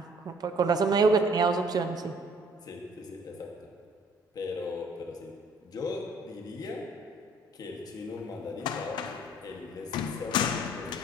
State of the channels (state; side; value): normal; both; correlation 0.58